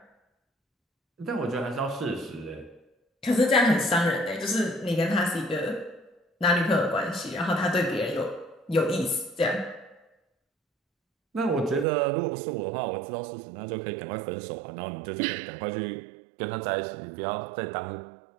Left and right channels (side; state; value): left; drops out; at 11.9 s